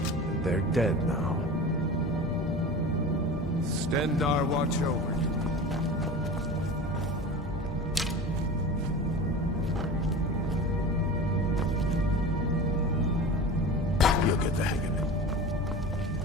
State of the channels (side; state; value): both; normal; correlation 0.33